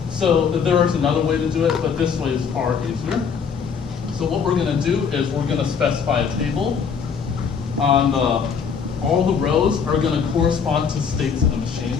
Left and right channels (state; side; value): quieter; right; 6.4 dB